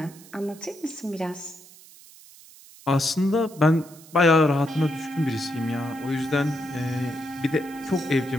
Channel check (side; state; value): right; noise; hiss, 22 dB below the sound